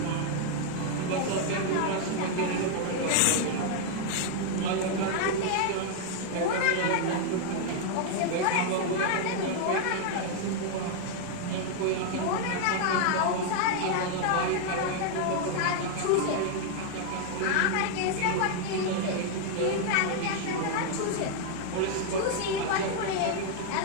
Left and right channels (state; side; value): different; both; correlation 0.00